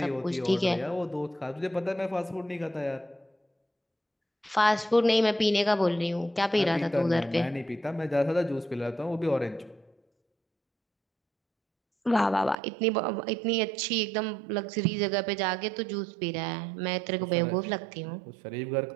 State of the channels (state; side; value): drops out; left; at 12.6 s